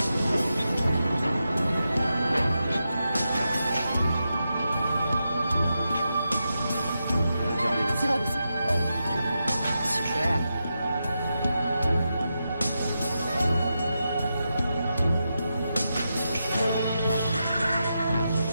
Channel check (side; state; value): both; inverted; correlation -0.87